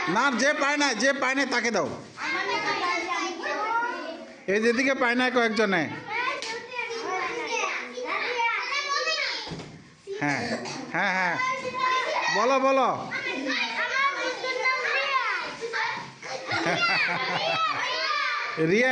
না, যে পায় না, যে পায় না তাকে দাও। এই যেদিকে পায় না কয়েকজনে। হ্যাঁ হ্যাঁ হ্যাঁ, বলো বলো। রিয়া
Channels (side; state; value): both; identical; correlation 1.00